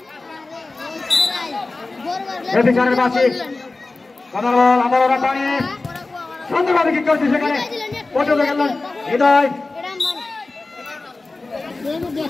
এপি স্যারের বাসি আবার ওরা পানি সুন্দরভাবে ঠিক করেছে সেখানে পর্যন্ত গেলেন হৃদয়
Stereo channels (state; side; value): quieter; right; 3.4 dB